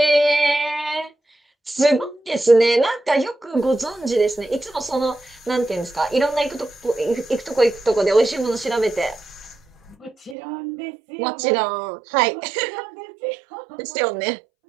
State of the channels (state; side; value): drops out; left; at 10.4 s